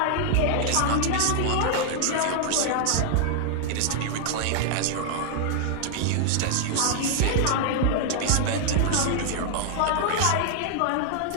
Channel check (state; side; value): different; both; correlation 0.00